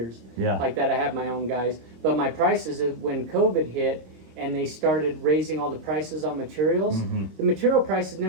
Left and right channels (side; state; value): left; late; 26 ms